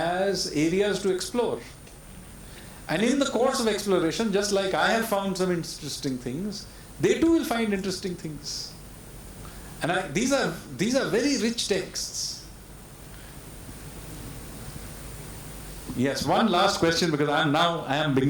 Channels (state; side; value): identical; both; correlation 1.00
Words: areas to explore. And in the course of exploration, just like I have found some interesting things, they too will find interesting things. And these are very rich texts. Yes, one last question, because I am